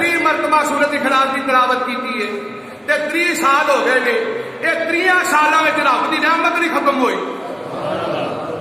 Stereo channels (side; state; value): both; identical; correlation 1.00